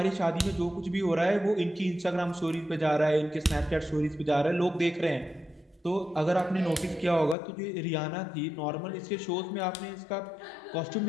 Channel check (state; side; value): drops out; right; at 7.4 s